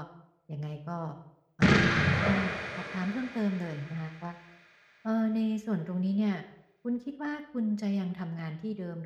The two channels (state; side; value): identical; both; correlation 1.00